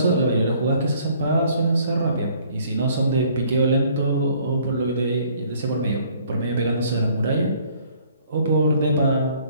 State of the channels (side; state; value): both; inverted; correlation -0.60